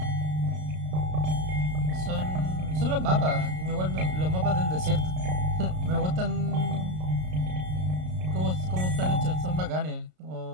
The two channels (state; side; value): late; left; 33 ms